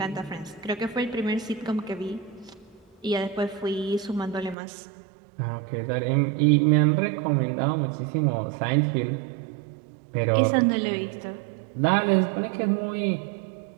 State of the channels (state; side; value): drops out; left; at 4.5 s